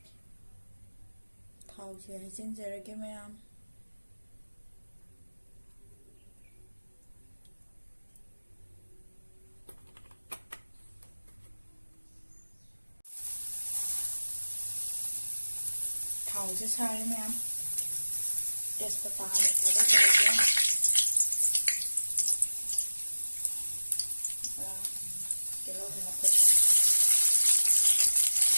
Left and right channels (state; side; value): inverted; both; correlation -1.00